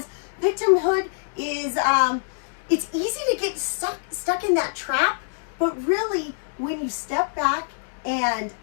victimhood is, it's easy to get stuck in that trap, but really when you step back and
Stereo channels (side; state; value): right; silent; digital silence